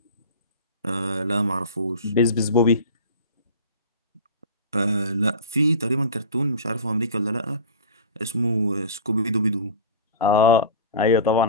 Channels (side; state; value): both; inverted; correlation -0.34